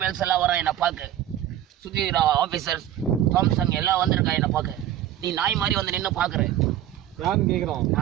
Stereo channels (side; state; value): left; quieter; 12.2 dB